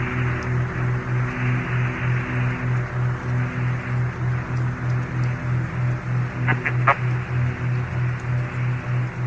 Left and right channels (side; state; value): both; identical; correlation 1.00